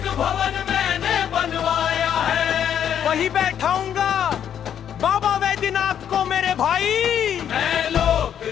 भवन मैंने बनवाया है, वही बैठाऊंगा बाबा वैद्यनाथ को मेरे भाई। मैं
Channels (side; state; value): right; quieter; 9.2 dB